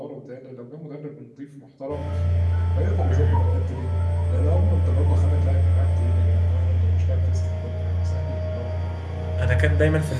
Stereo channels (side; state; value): both; identical; correlation 1.00